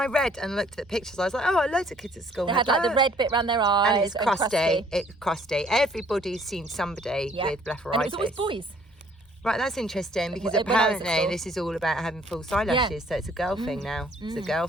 read and looked at pictures, I was like, oh, loads of kids at school They had like the red bit around their eyes. and it's crusty. It's crusty. Everybody's seen somebody with blepharitis. And it was always boys. Right, that's interesting because When I was at apparently school. this is all about having false eyelashes, so it's a girl thing now. It's a girl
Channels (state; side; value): normal; both; correlation 0.60